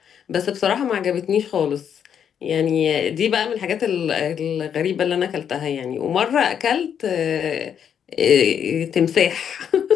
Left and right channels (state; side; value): quieter; right; 8.3 dB